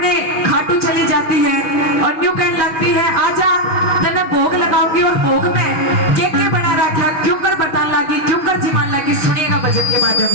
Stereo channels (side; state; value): right; late; 6.1 ms